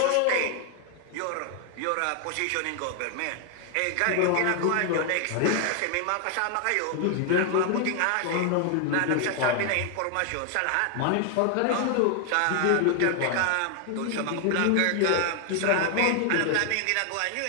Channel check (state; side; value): different; both; correlation 0.00